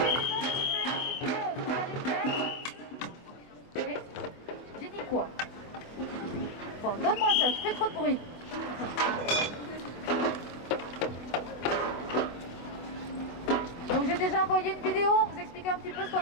quoi? Bon, donne-moi ça, tu fais trop de bruit. Donc j'ai déjà envoyé une vidéo, vous expliquer un petit peu ce qu'on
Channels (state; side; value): late; right; 24 ms